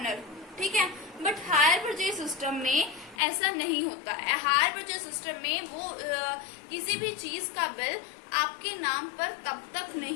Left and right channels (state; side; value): drops out; right; at 3.2 s